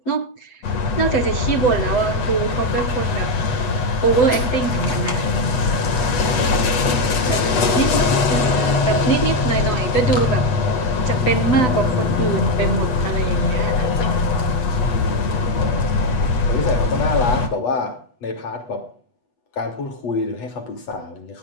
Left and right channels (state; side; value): late; right; 8.3 ms